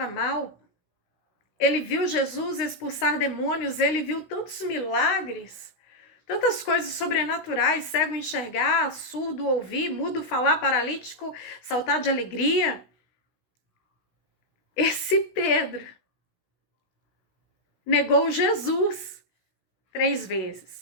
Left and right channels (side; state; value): right; late; 16 ms